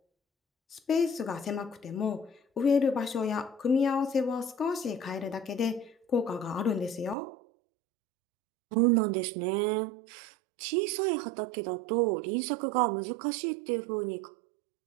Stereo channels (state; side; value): drops out; left; at 7.2 s